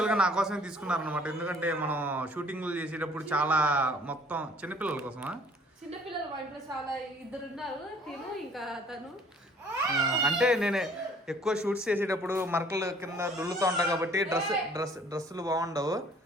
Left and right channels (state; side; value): normal; both; correlation 0.56